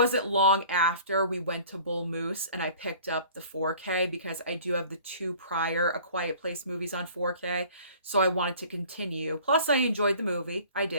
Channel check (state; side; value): inverted; both; correlation -0.48